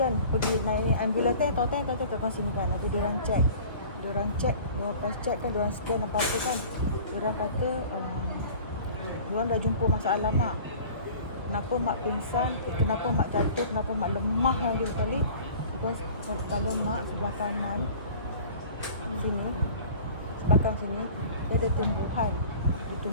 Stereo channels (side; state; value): both; inverted; correlation -0.44